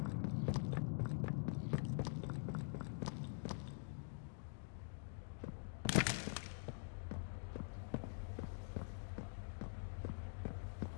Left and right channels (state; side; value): silent; right; digital silence